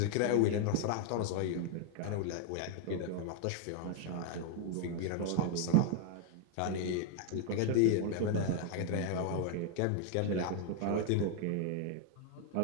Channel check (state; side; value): different; both; correlation 0.01